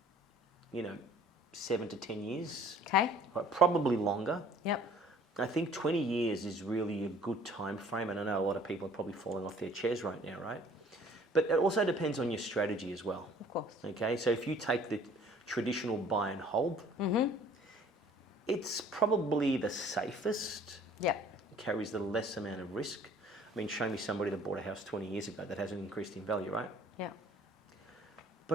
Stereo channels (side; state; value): both; normal; correlation 0.54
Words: you know, 7 to 10 years. Okay. Right, probably longer. Yep. I think 20 years is really a good time frame, and I know a lot of people are probably falling off their chairs right now, right? But it also depends on your strategy as well. Of course. Okay, so if you take the traditional buy and hold, it's probably the safest, Yep. carries the less amount of risk. I mean, show me somebody that bought a house 20 years ago that hasn't increased in value, right? Yeah.